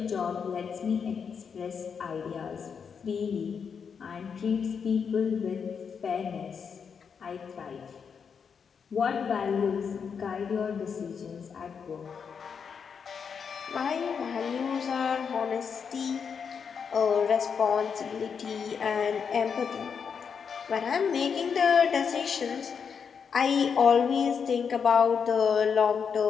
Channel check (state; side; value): quieter; right; 6.5 dB